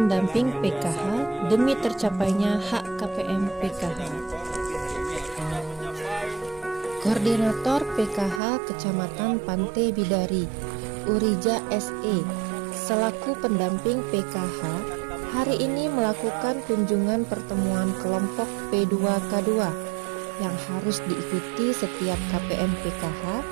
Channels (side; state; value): left; drops out; at 8.4 s